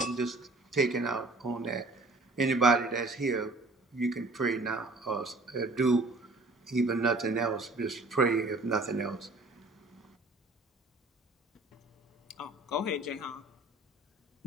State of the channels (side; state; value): both; normal; correlation 0.52